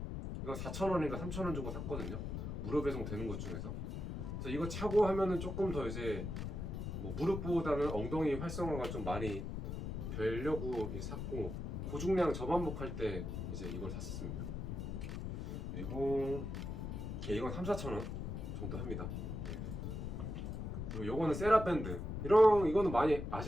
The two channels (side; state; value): left; noise; rumble, 4 dB below the sound